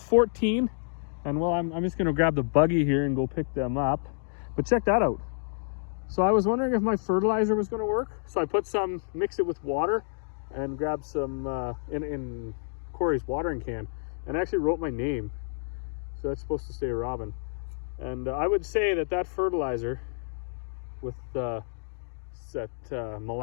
14, and well, I'm just gonna grab the buggy here and go pick them up. But check that out. So I was wondering if my fertilizer was going to work. So I put some, mix it with water, and grab some in Corey's watering can, and I actually wrote my name. So that's supposed to say Robin. And I would say that fertilizer with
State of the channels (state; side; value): silent; right; digital silence